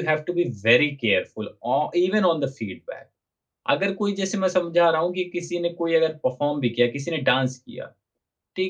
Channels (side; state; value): both; identical; correlation 1.00